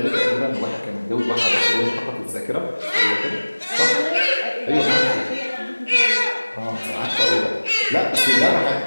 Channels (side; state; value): both; inverted; correlation -1.00